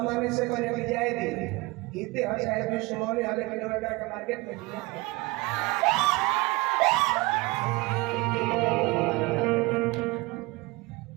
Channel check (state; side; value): quieter; left; 23.1 dB